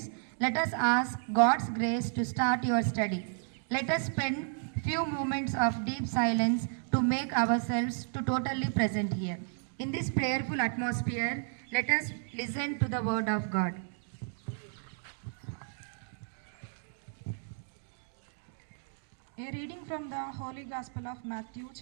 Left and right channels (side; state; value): left; silent; digital silence